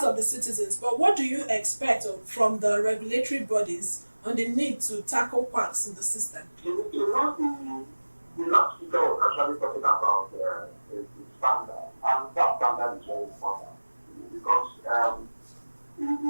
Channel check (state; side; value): inverted; both; correlation -1.00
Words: of the citizens, but what do you expect from the regulatory bodies on the need to tackle quacks in the system? The last speaker was actually talking about the standard, and that standard is very important because